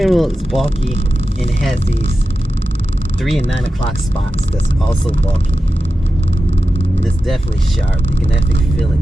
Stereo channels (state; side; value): normal; both; correlation 0.92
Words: wheel is bulky, and it has these 3 and 9 o'clock spots that's also bulky. And it's definitely sharp. You can definitely feel it